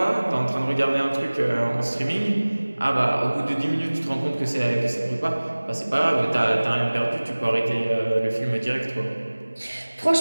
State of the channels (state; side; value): inverted; both; correlation -1.00